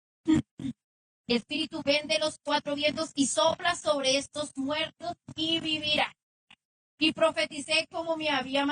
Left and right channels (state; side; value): identical; both; correlation 1.00